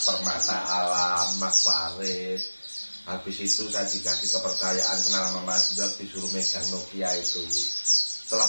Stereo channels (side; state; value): both; inverted; correlation -1.00